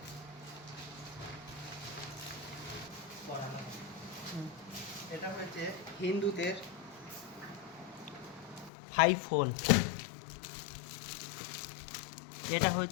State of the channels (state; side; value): drops out; right; at 8.7 s